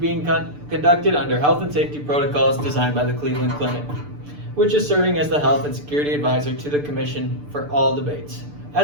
conducted under health and safety protocols designed by the Cleveland Clinic, which is serving as the health and security advisor to the commission for all debates.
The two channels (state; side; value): late; left; 6.8 ms